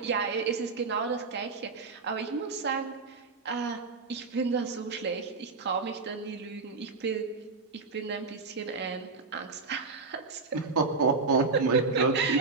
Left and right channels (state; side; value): quieter; left; 4.2 dB